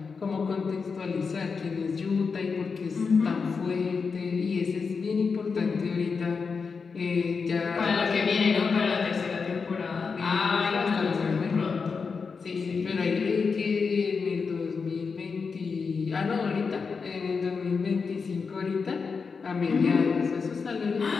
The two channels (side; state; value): right; quieter; 5.2 dB